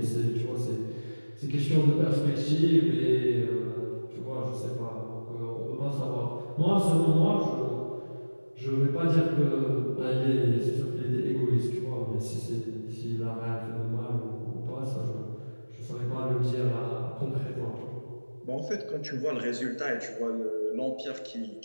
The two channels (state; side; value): inverted; both; correlation -1.00